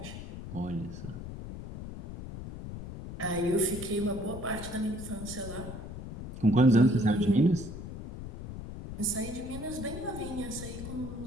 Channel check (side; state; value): left; noise; rumble, 10 dB below the sound